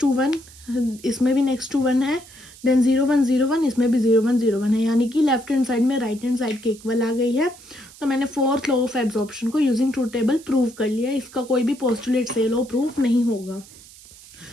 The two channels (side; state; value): right; noise; hiss, 21 dB below the sound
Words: 2 1, इसमें भी नेक्स्ट 2 1 है, देन 0 1 0 1, इसमें भी 0 1 0 1 है, यानी कि लेफ्ट हैंड साइड में राइट हैंड साइड के इक्वल आ गई है। तो मैंने फोर्थ लॉ ऑफ एब्जॉर्प्शन को यूजिंग ट्रुथ टेबल प्रूव कर लिया। इसका कोई भी पोस्टुलेट से लॉ प्रूफ नहीं होगा।